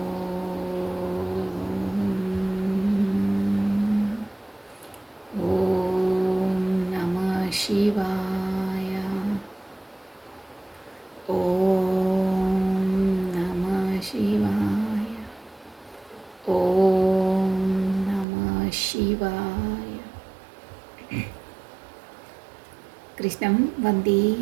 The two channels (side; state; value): left; drops out; at 18.2 s